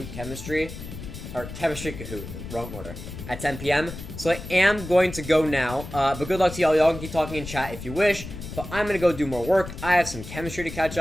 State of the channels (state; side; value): noise; left; rumble, 11 dB below the sound